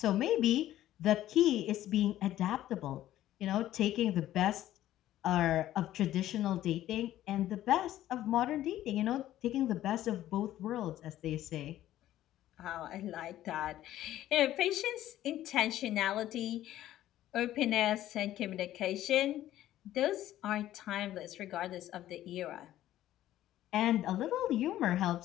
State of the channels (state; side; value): quieter; right; 13.4 dB